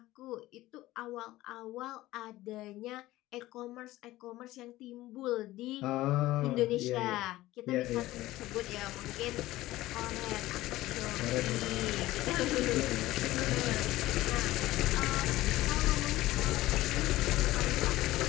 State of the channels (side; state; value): right; quieter; 16.9 dB